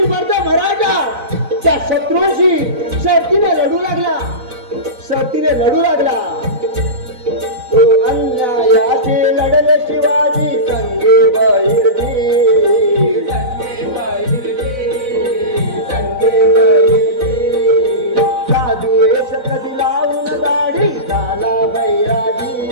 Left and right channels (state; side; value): late; left; 4.0 ms